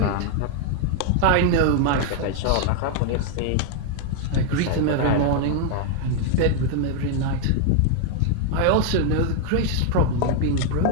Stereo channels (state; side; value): different; both; correlation 0.00